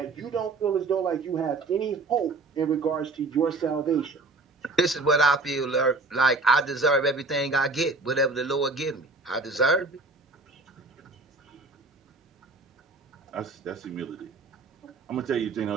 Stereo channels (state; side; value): quieter; left; 3.6 dB